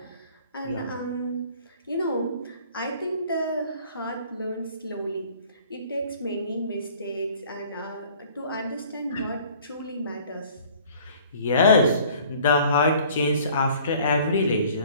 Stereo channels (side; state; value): both; inverted; correlation -0.53